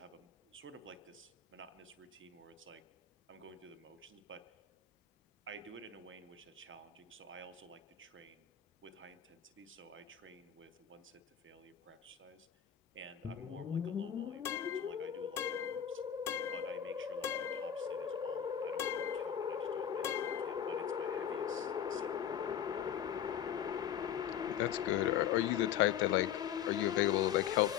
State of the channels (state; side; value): quieter; right; 9.3 dB